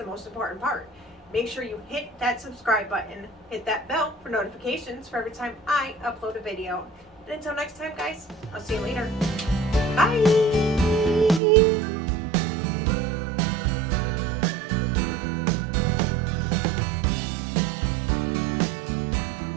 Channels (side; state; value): left; drops out; at 11.4 s